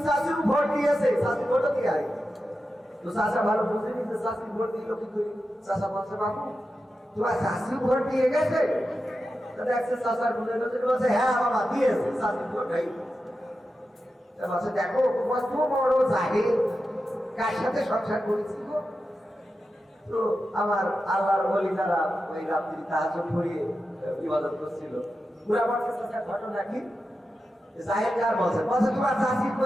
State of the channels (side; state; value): both; normal; correlation 0.91